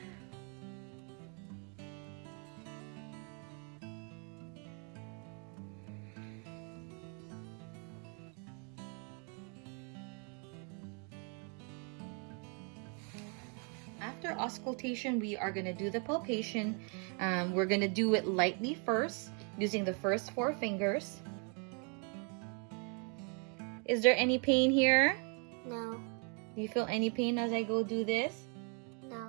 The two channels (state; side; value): quieter; left; 37.7 dB